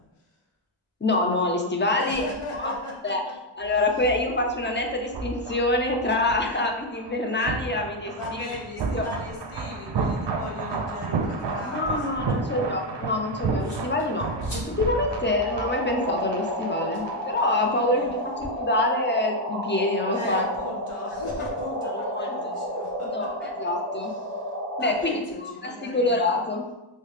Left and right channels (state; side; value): normal; both; correlation 0.02